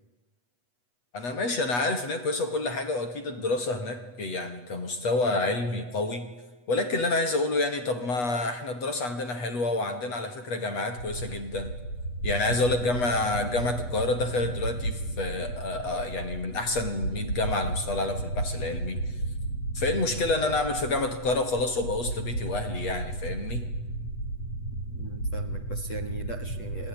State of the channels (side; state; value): right; late; 8.2 ms